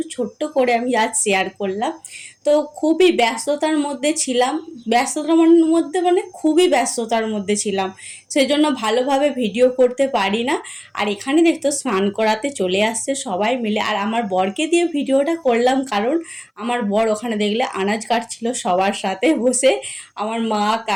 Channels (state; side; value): identical; both; correlation 1.00